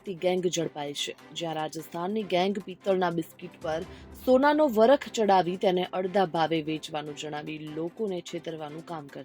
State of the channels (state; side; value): identical; both; correlation 1.00